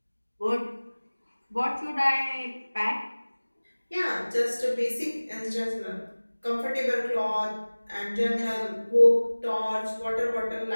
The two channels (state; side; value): inverted; both; correlation -1.00